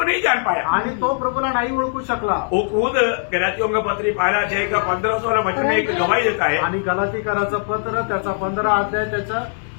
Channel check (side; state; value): right; silent; digital silence